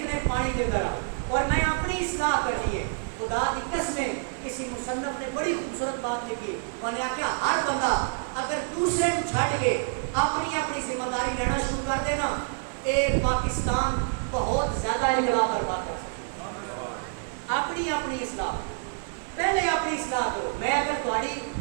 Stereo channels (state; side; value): silent; left; digital silence